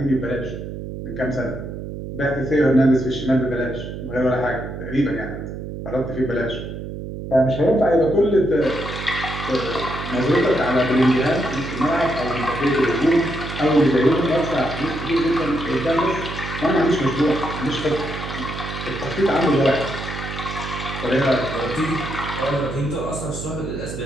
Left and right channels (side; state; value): right; noise; hum, 8 dB below the sound